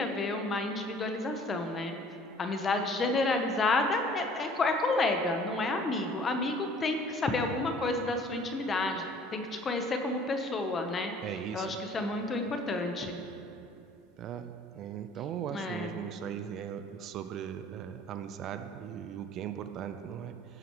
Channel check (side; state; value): both; normal; correlation 0.52